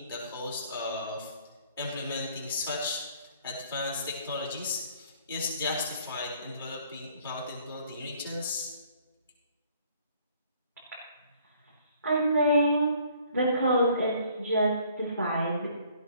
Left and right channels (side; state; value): both; inverted; correlation -0.60